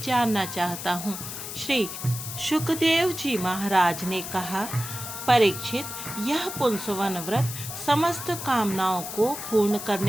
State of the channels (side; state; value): left; noise; hiss, 8 dB below the sound